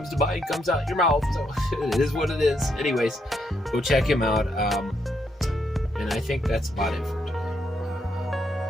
to mind comes out your mouth. So it is what it is. Anyways, go check him out. And I think that's about it for today.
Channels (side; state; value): both; normal; correlation 0.77